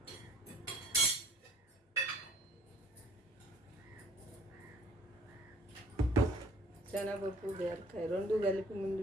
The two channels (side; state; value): both; normal; correlation 0.55